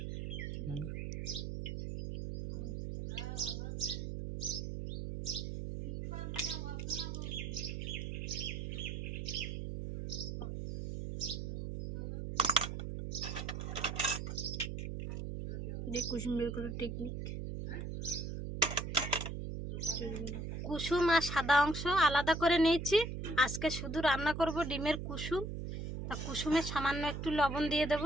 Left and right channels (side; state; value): right; noise; hum, 5 dB below the sound